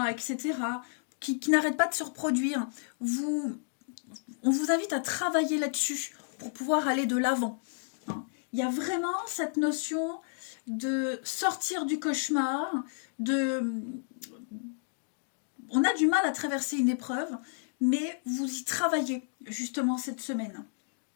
etc., qui n'arrêtent pas de se reproduire. On vous invite à travailler là-dessus pour pouvoir aller de l'avant. Il y a vraiment cette notion de sortir du cauchemar, on a du mal à traverser une épreuve, mais vous y travaillez justement cette semaine.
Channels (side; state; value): right; silent; digital silence